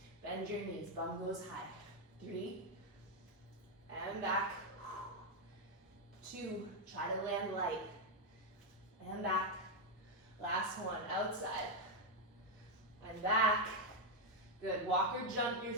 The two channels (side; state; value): both; normal; correlation 0.02